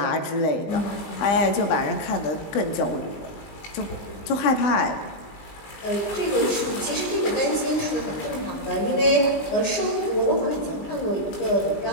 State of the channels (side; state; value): right; late; 20 ms